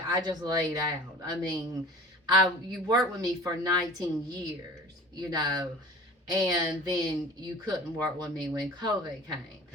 I just laid out. I mean, you worked with me for 19 years, you know, and then you couldn't work with me when COVID came.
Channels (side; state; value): both; normal; correlation 0.42